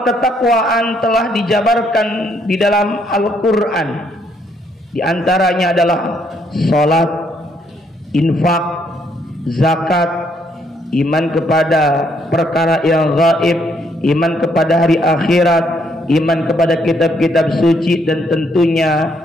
ketakwaan telah dijabarkan di dalam Al-Quran. Di antaranya adalah salat, infak, zakat, iman kepada perkara yang gaib, iman kepada hari akhirat, iman kepada kitab-kitab suci, dan tentunya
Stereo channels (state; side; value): normal; both; correlation 0.71